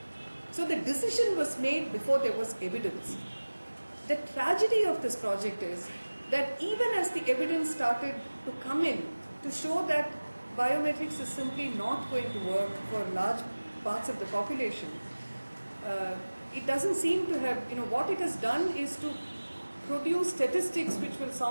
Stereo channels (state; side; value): inverted; both; correlation -1.00